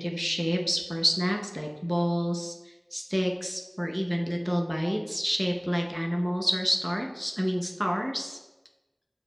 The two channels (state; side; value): identical; both; correlation 1.00